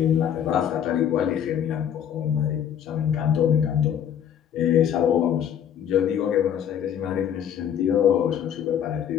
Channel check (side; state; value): right; quieter; 9.2 dB